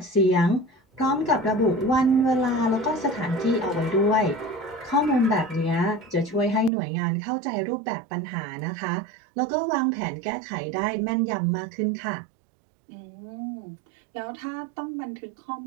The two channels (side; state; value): left; drops out; at 6.7 s